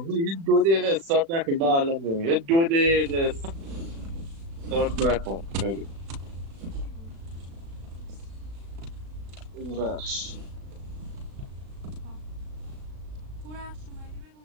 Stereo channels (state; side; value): late; left; 36 ms